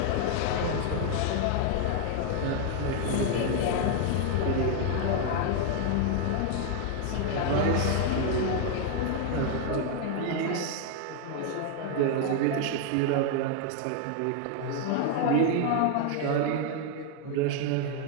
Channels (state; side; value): different; both; correlation 0.00